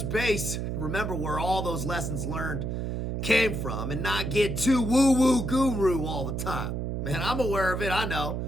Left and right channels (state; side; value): noise; right; hum, 2 dB below the sound